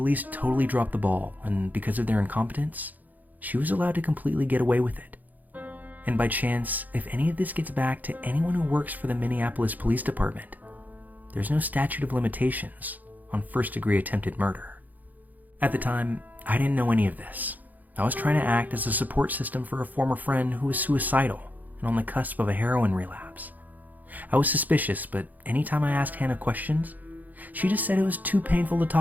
totally dropped the ball, and because of their incompetence, she was allowed to completely get away with it. And by chance, if any of this gets back to anyone who works for the Minneapolis Police Department, there's no statute of limitations on first-degree attempted murder. At the time, I didn't know any of this. I was trying to act as a support system for a former friend who was suicidal and on the cusp of a heroin relapse. I was suspicious, but anytime I asked Hannah questions, she just said it was too painful to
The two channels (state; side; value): late; left; 0.082 ms